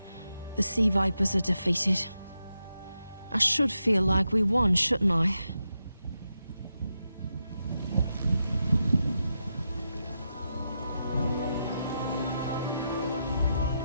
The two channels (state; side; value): inverted; both; correlation -0.86